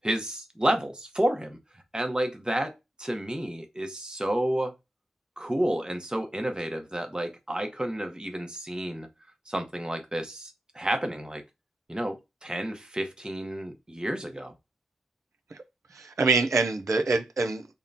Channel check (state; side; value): normal; both; correlation 0.86